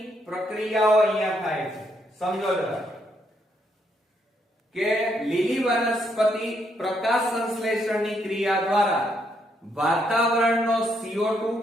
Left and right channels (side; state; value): both; normal; correlation 0.75